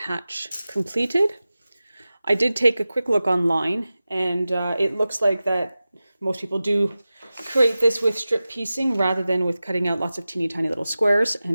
completed. I did take a quick look online, and it looks like that most people do create this with strip piecing rather than with cutting out lots of teeny tiny little squares,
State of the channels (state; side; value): inverted; both; correlation -0.95